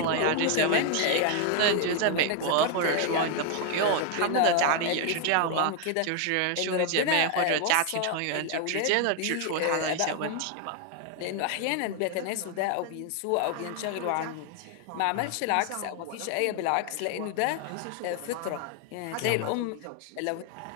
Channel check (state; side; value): different; both; correlation 0.01